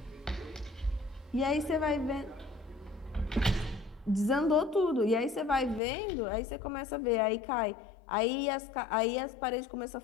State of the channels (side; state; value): right; drops out; at 5.8 s